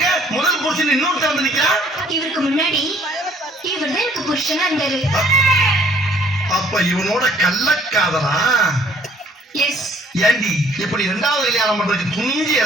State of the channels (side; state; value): both; normal; correlation 0.60